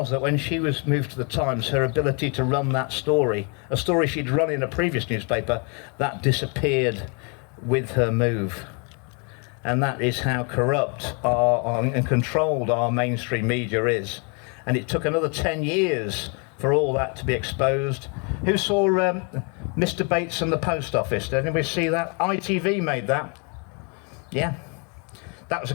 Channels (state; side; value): quieter; right; 35.6 dB